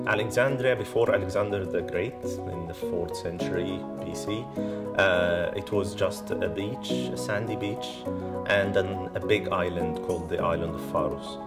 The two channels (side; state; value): both; identical; correlation 1.00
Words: Alexandria, before Alexander the Great, in the 4th century BC, it was just a beach, a sandy beach, and then a big island called the island of Pharos.